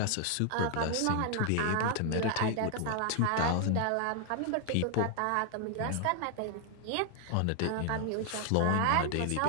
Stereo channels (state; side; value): different; both; correlation 0.00